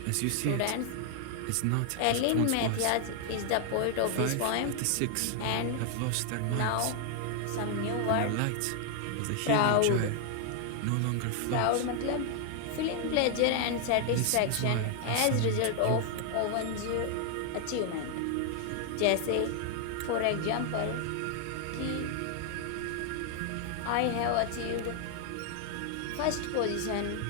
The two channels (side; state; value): both; different; correlation 0.00